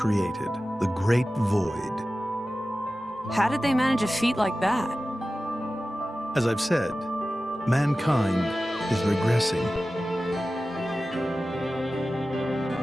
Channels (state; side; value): normal; both; correlation 0.95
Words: the Great Void. How did they manage a feat like that? As I've said, mankind is regressing.